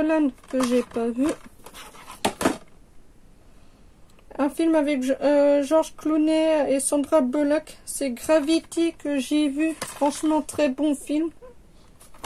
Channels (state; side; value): identical; both; correlation 1.00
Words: que j'ai pas vu. Un film avec George Clooney et Sandra Bullock, c'est Gravity, que j'ai vu. Franchement, très bon film.